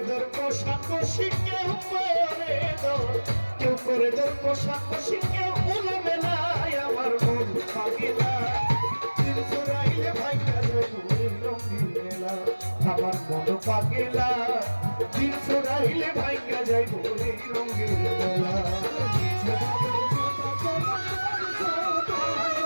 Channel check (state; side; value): inverted; both; correlation -1.00